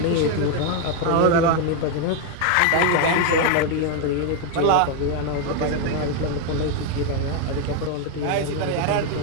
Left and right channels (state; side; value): different; both; correlation 0.01